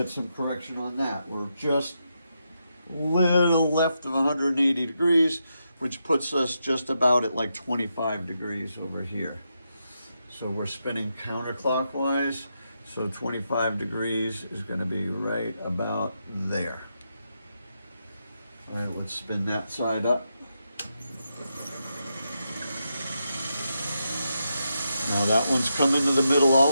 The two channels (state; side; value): inverted; both; correlation -0.84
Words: some correction on that. We're just a little left of 180 degrees, which puts us just about at like 25 degrees over here. So we're spinning counterclockwise. So 25 degrees is going to be right about there. All right, let's spin that side up. Now that one's coming to the middle